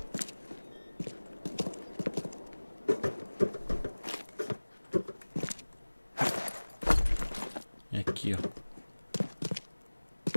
É aqui, ó.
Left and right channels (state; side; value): inverted; both; correlation -1.00